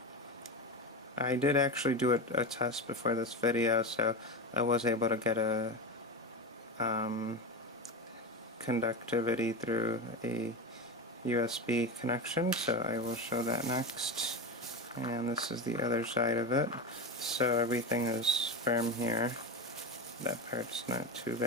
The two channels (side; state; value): both; normal; correlation 0.20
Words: did actually do a test before this video, so I was able to get a conductivity through a USB connection, so I will show that next. And this is the other side of it. So everything is firm here. That part's not too